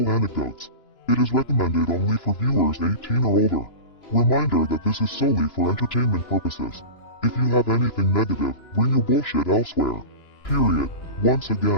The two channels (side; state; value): right; late; 2.9 ms